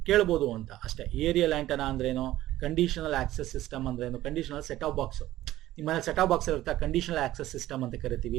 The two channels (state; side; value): quieter; left; 15.0 dB